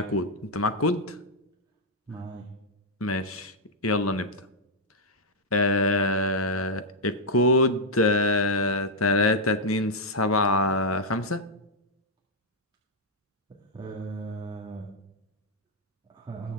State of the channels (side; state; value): both; normal; correlation -0.04